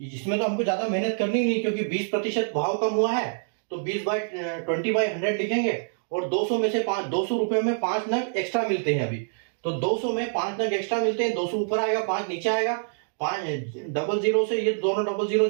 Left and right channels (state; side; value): silent; left; digital silence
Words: इसमें तो हमको ज्यादा मेहनत करनी नहीं, क्योंकि 20% भाव कम हुआ है, तो 20/100 लिखेंगे, और 200 में से 200 रुपए में 5 नग एक्स्ट्रा मिलते हैं अभी, तो 200 में 5 नग एक्स्ट्रा मिलते हैं, 200 ऊपर आएगा, 5 नीचे आएगा, 5 डबल जीरो से ये दोनों डबल जीरो